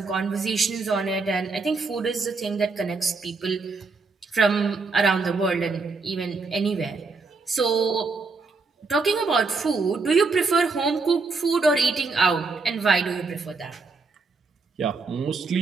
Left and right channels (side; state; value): left; quieter; 4.1 dB